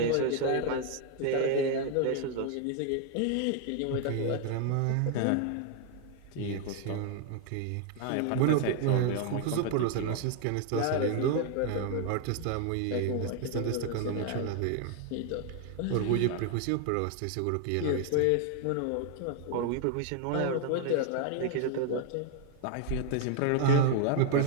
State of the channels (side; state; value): both; different; correlation 0.00